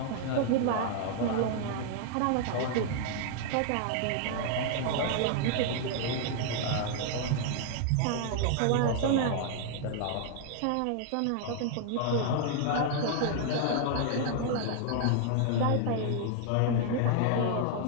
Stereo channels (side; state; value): both; different; correlation 0.00